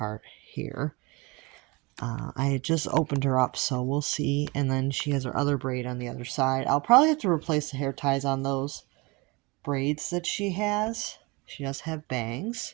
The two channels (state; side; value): quieter; left; 25.8 dB